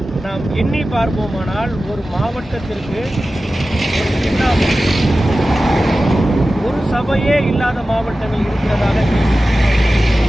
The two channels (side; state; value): both; normal; correlation 0.95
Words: நாம் எண்ணி பார்ப்போமானால் ஒரு மாவட்டத்திற்கு ஒரு சபையே இல்லாத மாவட்டங்கள் இருக்கிறதாக